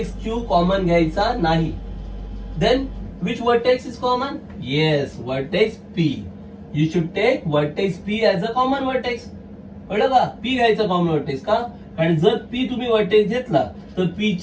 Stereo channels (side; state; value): both; identical; correlation 1.00